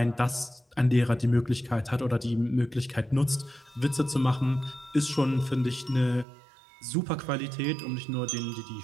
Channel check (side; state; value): left; drops out; at 6.2 s